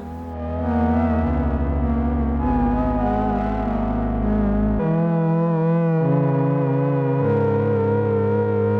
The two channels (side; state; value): both; identical; correlation 1.00